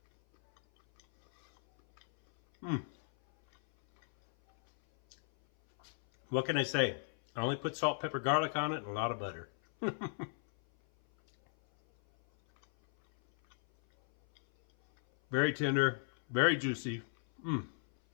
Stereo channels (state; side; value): silent; right; 55 dB below the other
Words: What can I say? I only put salt, pepper, garlic on it, and a lot of butter. Very tender, very juicy.